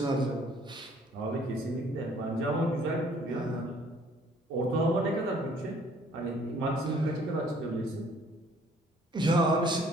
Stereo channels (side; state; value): both; normal; correlation 0.59